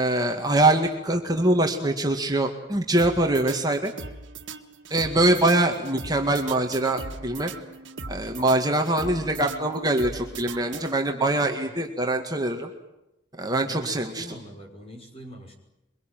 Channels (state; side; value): normal; both; correlation 0.39